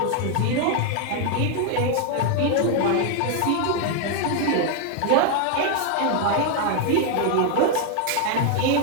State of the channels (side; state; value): both; different; correlation 0.01